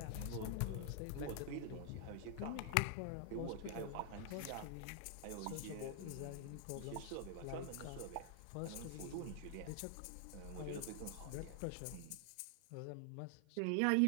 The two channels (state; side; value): different; both; correlation 0.00